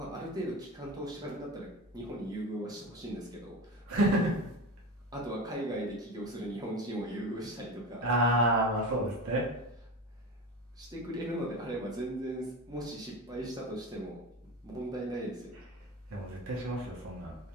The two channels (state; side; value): normal; both; correlation 0.26